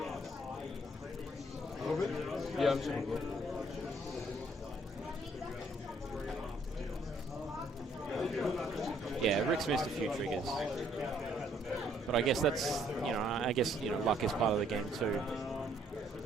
Yeah, I'm saying. Yeah, Rick's missed a few triggers. But I guess that's, luck is part of the game too.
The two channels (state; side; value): normal; both; correlation 0.66